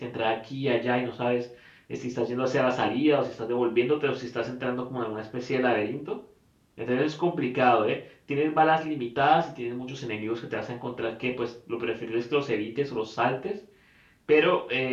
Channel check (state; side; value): identical; both; correlation 1.00